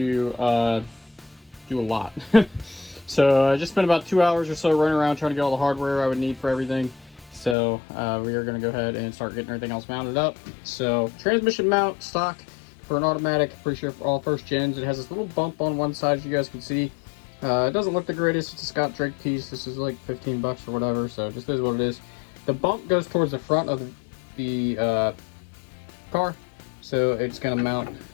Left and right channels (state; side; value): drops out; right; at 7.6 s